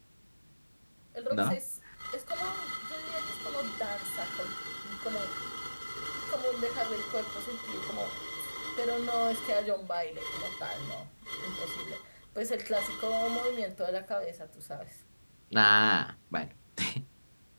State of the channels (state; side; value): inverted; both; correlation -1.00